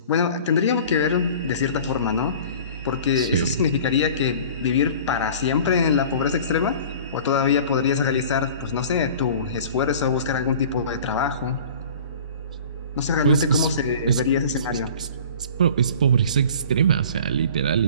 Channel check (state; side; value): inverted; both; correlation -0.43